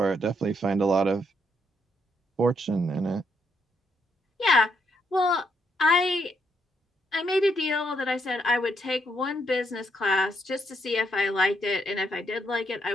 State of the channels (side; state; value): both; normal; correlation 0.75